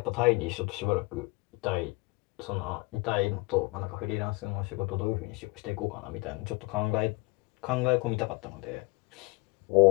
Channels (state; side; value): quieter; right; 24.8 dB